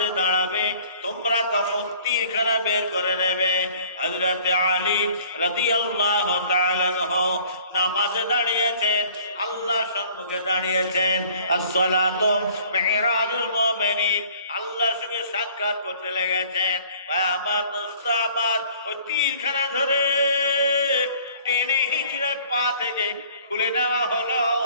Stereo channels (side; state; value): both; inverted; correlation -0.53